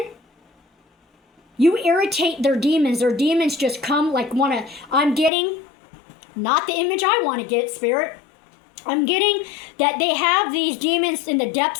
you irritate their demons. Their demons just come like I'm getting not the image I want to get, Spirit. I'm getting that they have these demons in the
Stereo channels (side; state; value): right; drops out; at 5.3 s